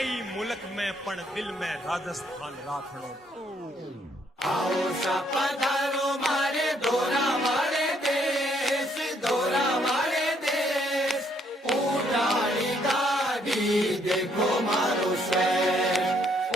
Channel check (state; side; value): normal; both; correlation 0.69